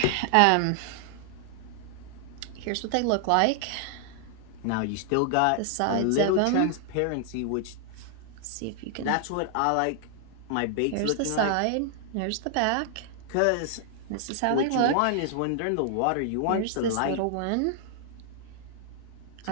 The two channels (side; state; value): both; different; correlation 0.00